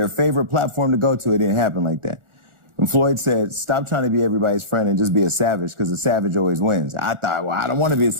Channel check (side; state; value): left; late; 1.4 ms